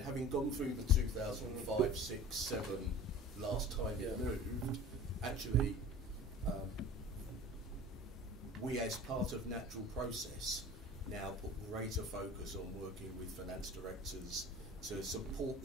having gone through the 2005, 6, 7 last time it moved, actually, we as part of natural process now put greater focus on working with finance directors to support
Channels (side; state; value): both; normal; correlation 0.40